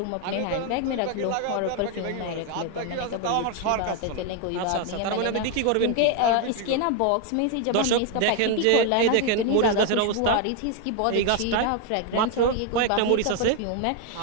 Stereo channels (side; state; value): both; different; correlation 0.01